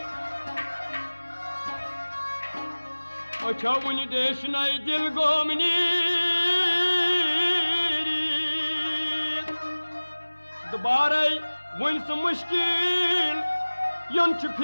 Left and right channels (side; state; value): both; inverted; correlation -1.00